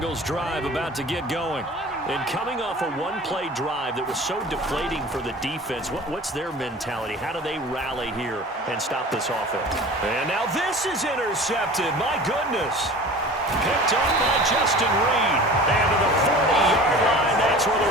drive about to get going. And coming off a one-play drive that was so deflating for the defense, what's their mentality? How do they rally here and stop this offense? And now this is intercepted. My goodness. Picked up by Justin Reed. And to the 40-yard line, that's where the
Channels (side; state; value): both; normal; correlation 0.40